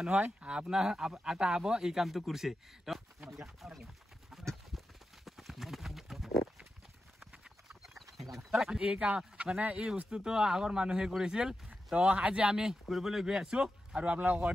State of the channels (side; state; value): both; normal; correlation 0.90